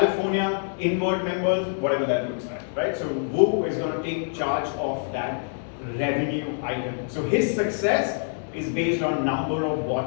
inward members, whatever that looks like, right? So Wu is going to take charge of that revenue item. So his success is based on number of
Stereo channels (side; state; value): right; silent; digital silence